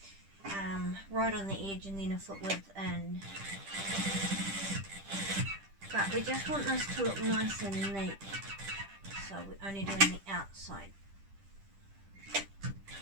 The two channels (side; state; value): left; late; 10 ms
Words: Right on the edge and then a foot width in. But we just want this to look nice and neat, so we're only doing the outside